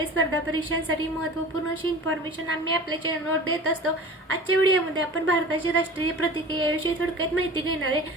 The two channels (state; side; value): normal; both; correlation 0.39